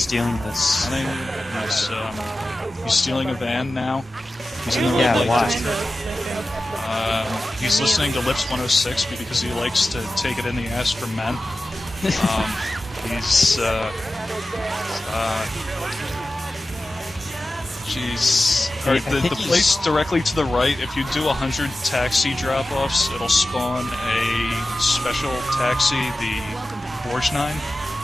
this? running, he's stealing a van now. He's in the Yeah, red light why? district. He's listening to Lips 106 because he likes to take it in the ass from men. He's Jeez. Alright, the place directly to the right, if you do 100 taxi drop-offs, it'll spawn a special taxi, the Borgnine.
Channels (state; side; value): normal; both; correlation 0.94